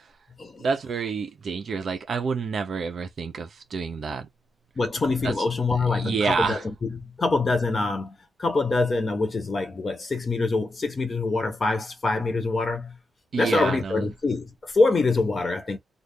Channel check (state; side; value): normal; both; correlation 0.86